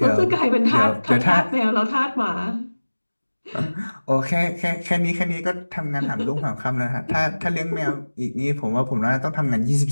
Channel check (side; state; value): both; inverted; correlation -1.00